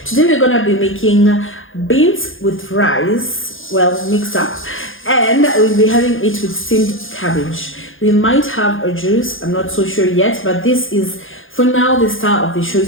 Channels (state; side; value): late; right; 0.58 ms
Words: Today we're gonna be making beans with rice, well mixed up, and we'll be having it with steamed cabbage. We might have a juice, I'm not so sure yet, but this is for now the star of the show.